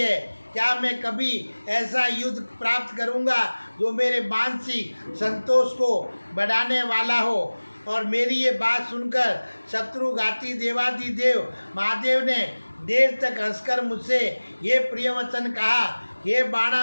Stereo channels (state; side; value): inverted; both; correlation -1.00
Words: क्या मैं कभी ऐसा युद्ध प्राप्त करूंगा जो मेरे मानसिक संतोष को बढ़ाने वाला हो। और मेरी ये बात सुनकर शत्रुघाती देवादिदेव महादेव ने देर तक हंसकर मुझसे ये प्रिय वचन कहा, हे